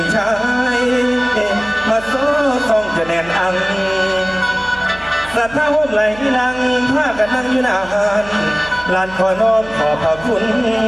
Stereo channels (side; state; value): right; noise; hum, 18 dB below the sound